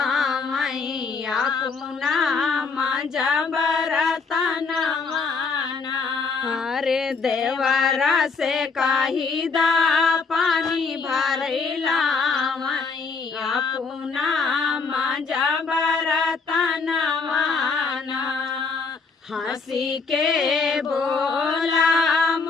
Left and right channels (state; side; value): quieter; right; 4.7 dB